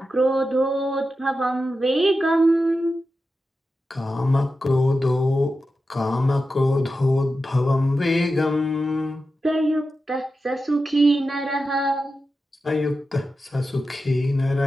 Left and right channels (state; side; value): normal; both; correlation 0.91